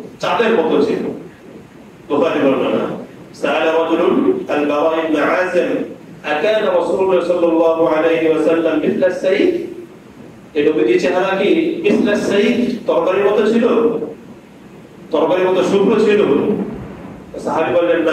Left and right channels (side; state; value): both; identical; correlation 1.00